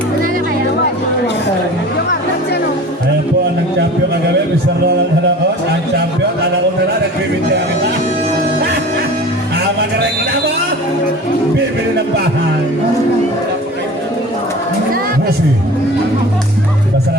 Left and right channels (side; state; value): both; normal; correlation 0.39